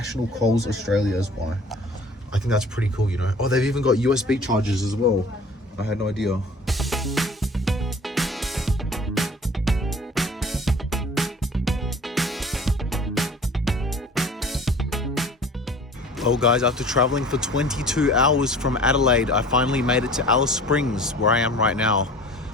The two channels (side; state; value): both; normal; correlation 0.46